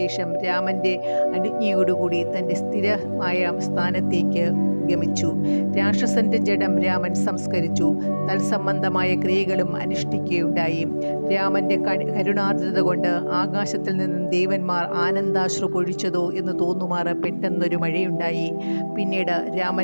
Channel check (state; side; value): inverted; both; correlation -1.00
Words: രാമന്റെ അനുജ്ഞയോടുകൂടി തൻ്റെ സ്ഥിരമായ സ്ഥാനത്തേക്ക് ഗമിച്ചു. രാക്ഷസന്റെ ജഡം രാമൻ സംസ്കരിച്ചു. തത്സംബന്ധമായ ക്രിയകളും അനുഷ്ഠിക്കുകയുണ്ടായി. രാമന്റെ കരുണാർദ്രത കൊണ്ട് ആകാശത്തിൽ നിന്നും ദേവന്മാർ ആനന്ദാശ്രു പൊഴിച്ചതോ എന്ന് തോന്നുമാറ് പെട്ടെന്നൊരു മഴയുണ്ടായി. പിന്നീട്